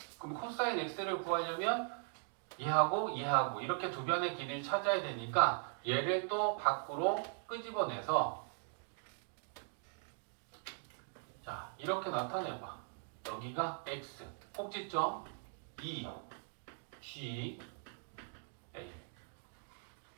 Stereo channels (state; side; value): silent; left; 51 dB below the other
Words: 그럼 코사인 x를 구하려면 얘하고 이렇게 두 변의 길이를 찾아야 되니까 얘를 또 밖으로 끄집어내서 자 이렇게 나타내봐. 여기가 x 꼭지점 2 G A.